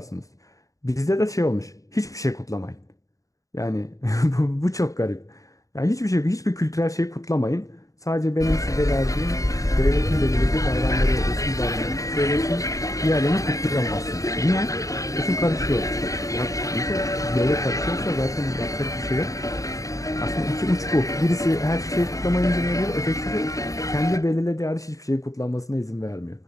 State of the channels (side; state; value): right; late; 0.16 ms